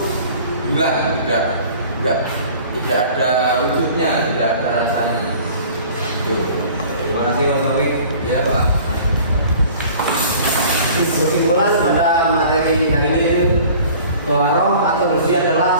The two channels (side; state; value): both; inverted; correlation -0.47